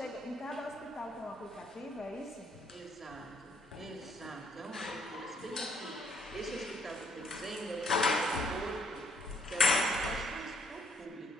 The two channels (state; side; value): normal; both; correlation 0.68